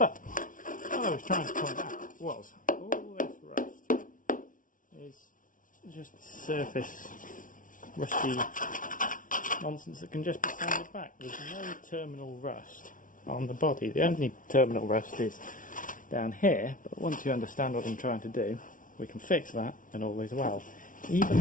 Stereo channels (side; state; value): right; late; 0.38 ms